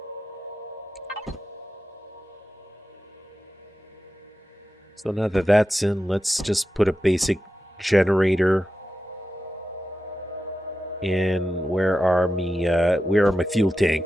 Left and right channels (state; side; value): normal; both; correlation 0.90